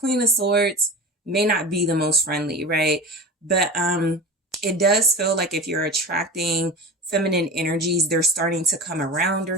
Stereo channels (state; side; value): normal; both; correlation 0.31